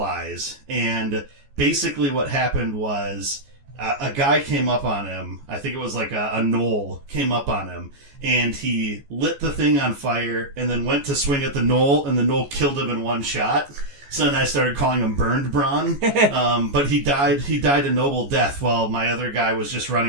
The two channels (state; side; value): late; left; 14 ms